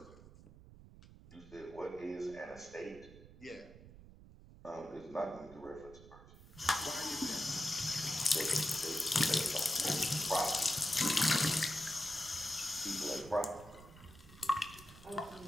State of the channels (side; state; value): right; noise; rumble, 19 dB below the sound